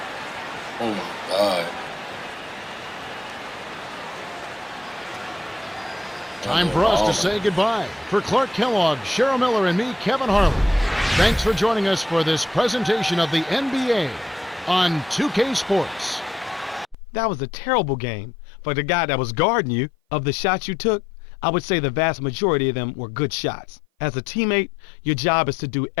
Oh my God. Time for us to say goodbye. For Clark Kellogg, Cheryl Miller, and me, Kevin Harlan, thanks for joining us for this presentation of the NBA on 2K Sports. That was a terrible game. For the guy that was guarding you, of the shots you took, I would say the vast majority of them were good shots. As a teammate, your job is to do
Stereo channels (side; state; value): right; drops out; at 16.9 s